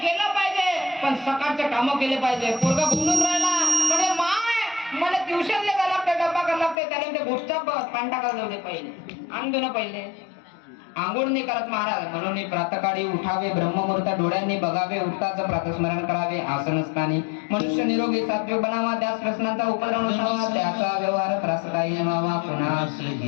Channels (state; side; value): drops out; right; at 6.8 s